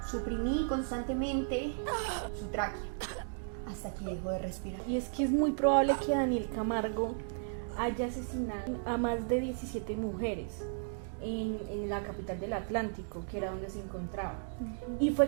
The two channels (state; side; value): silent; left; digital silence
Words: suprimí constantemente su tráquea hasta que dejó de respirar. Y es que es muy probable que Daniel Camargo haya asesinado a más de 17 mujeres en la capital del Atlántico, que era donde se encontraba. Y fue